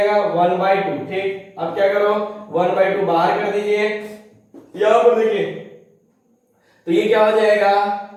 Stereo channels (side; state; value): both; identical; correlation 1.00